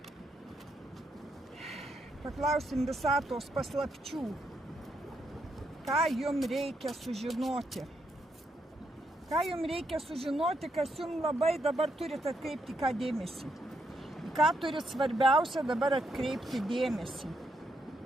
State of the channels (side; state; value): both; normal; correlation 0.78